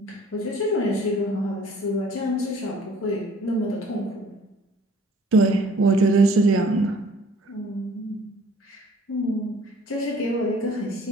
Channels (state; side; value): normal; both; correlation 0.54